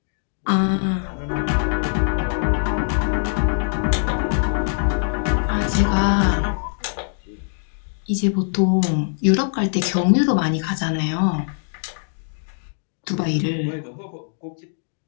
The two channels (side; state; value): right; silent; 64 dB below the other